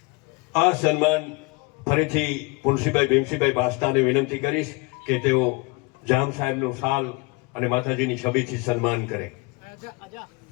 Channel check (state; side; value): quieter; right; 27.3 dB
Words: આ સન્માન ફરીથી પુનસીભાઈ ભીમસીભાઈ બાસ્તાને વિનંતી કરીશ કે તેઓ જામ સાહેબનો શાલ અને માતાજીની છબીથી સન્માન કરે.